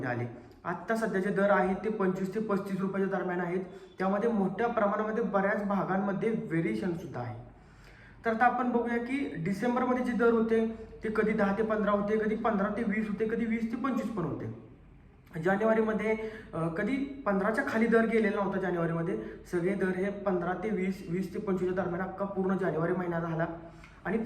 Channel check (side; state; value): both; identical; correlation 1.00